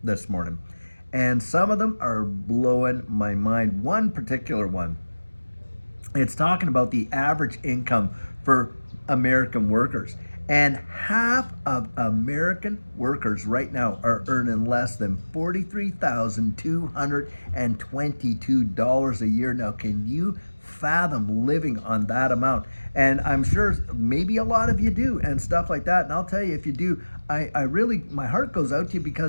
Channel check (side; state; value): both; inverted; correlation -1.00